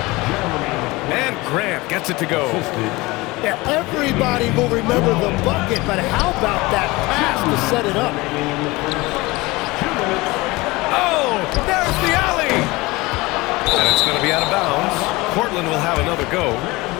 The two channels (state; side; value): quieter; right; 22.0 dB